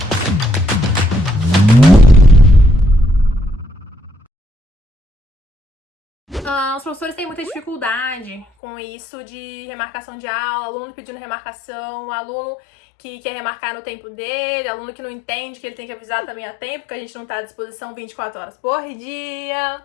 Os professores têm muita dificuldade com isso de remarcação de aula, aluno pedindo remarcação, aluno que quer remarcar no tempo dele, aluno que não entende que ele tem que avisar também a tempo, que a gente não tá à disposição 24 horas por dia.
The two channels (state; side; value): drops out; right; at 8.5 s